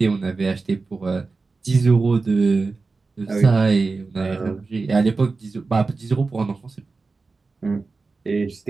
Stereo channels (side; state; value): left; quieter; 4.0 dB